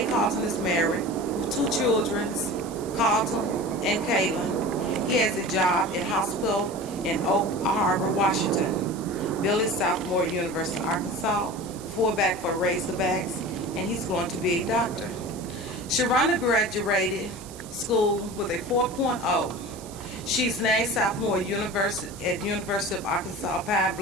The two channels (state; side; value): noise; right; hiss, 17 dB below the sound